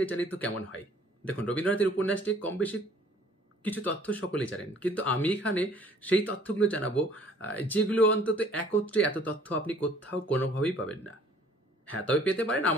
জানি তো কেমন হয়? দেখুন, রবীন্দ্রনাথের উপন্যাসটি কম বেশি কিছু তথ্য সকলেই জানেন। কিন্তু আমি এখানে সেই তথ্যগুলো জানাবো যেগুলো অন্তত একত্রে এত তথ্য আপনি কোথাও কোনোভাবেই পাবেন না। হ্যাঁ, তবে পেতে পারেন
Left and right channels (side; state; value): both; normal; correlation 0.56